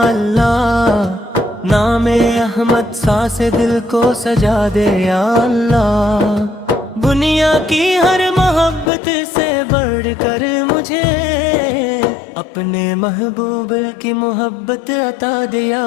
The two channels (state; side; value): drops out; right; at 8.9 s